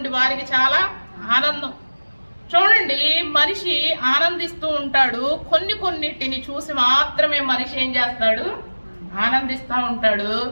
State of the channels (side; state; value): both; inverted; correlation -1.00